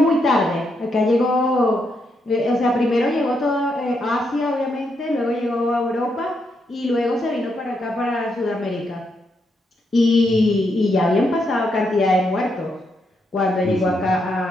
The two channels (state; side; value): normal; both; correlation 0.79